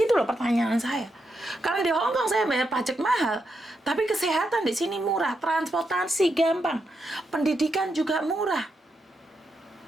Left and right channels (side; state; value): both; normal; correlation 0.83